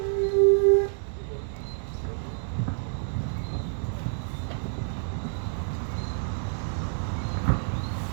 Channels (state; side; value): silent; left; 59 dB below the other